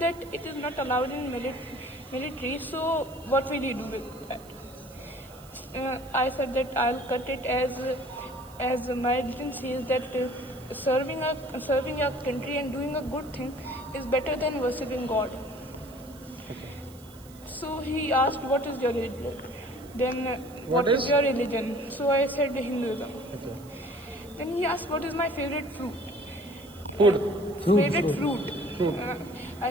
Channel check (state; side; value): noise; right; hiss, 23 dB below the sound